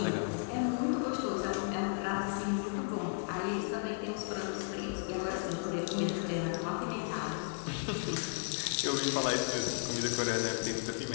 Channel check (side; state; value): right; silent; 55 dB below the other